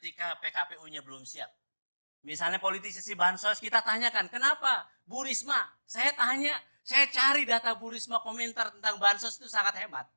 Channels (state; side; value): inverted; both; correlation -1.00